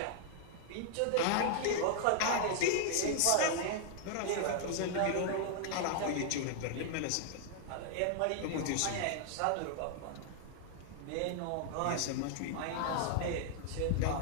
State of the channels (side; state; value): both; different; correlation 0.00